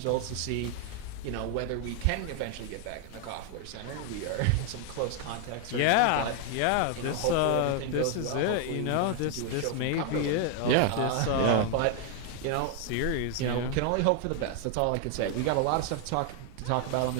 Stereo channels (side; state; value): both; different; correlation 0.00